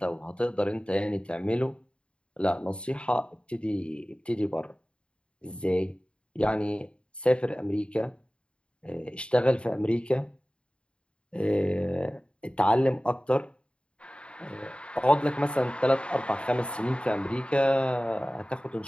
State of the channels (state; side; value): late; right; 0.056 ms